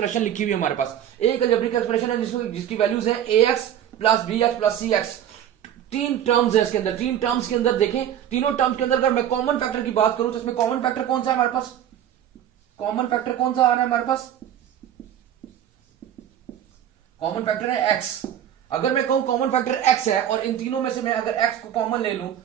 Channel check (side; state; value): left; quieter; 10.5 dB